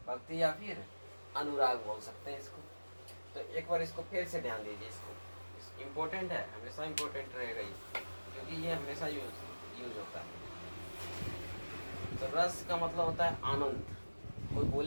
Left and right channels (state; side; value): inverted; both; correlation -1.00